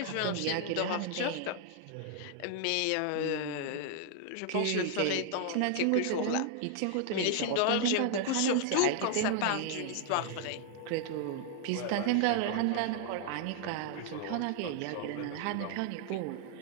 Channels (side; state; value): both; different; correlation 0.00